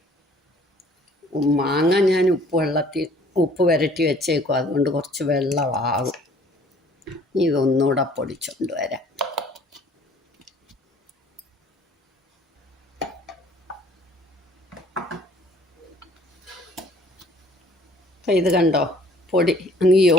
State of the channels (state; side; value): normal; both; correlation 0.55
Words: മാങ്ങ ഞാൻ ഉപ്പ് വരട്ടി വെച്ചേക്കും. അതുകൊണ്ട് കുറച്ച് വെള്ളമാകും. ഇതൊന്നുകൂടെ പൊടിച്ചുകൊണ്ട് വരാം. അപ്പം ഇത് കണ്ടോ, പൊടി അങ്ങ്